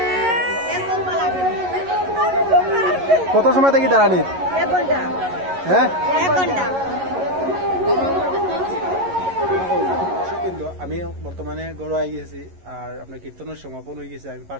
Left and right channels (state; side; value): late; left; 11 ms